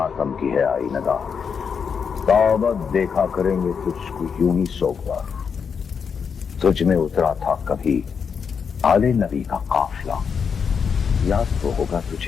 کی ہے آئی ندا، تابت دیکھا کریں گے تجھ کو یوں ہی سوگوار، تجھ میں اترا تھا کبھی آل نبی کا قافلہ، یاد تو ہوگا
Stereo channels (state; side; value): quieter; right; 6.4 dB